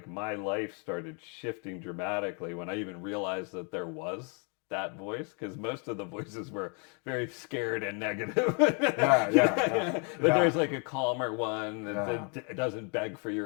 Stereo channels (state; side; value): quieter; right; 36.8 dB